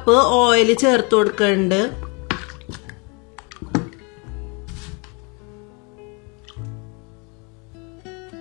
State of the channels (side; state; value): right; quieter; 32.0 dB